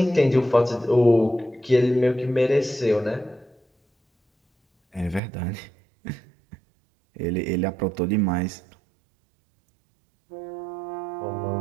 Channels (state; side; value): drops out; left; at 5.2 s